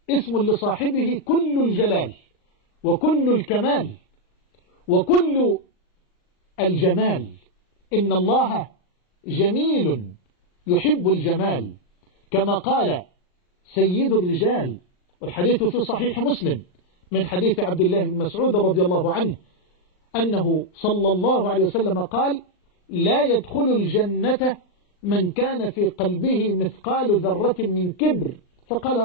اسم لصاحبه كل الجلال وكل الكمال وكل الجمال. إن الله جميل يحب الجمال، كما قال سيد الرجال، والحديث في صحيح مسلم من حديث عبد الله بن مسعود رضي الله عنه أنه صلى الله عليه وسلم قال: لا يدخل الجنة من كان في قلبه مثقال ذرة من كبر. فقال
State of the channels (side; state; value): right; late; 39 ms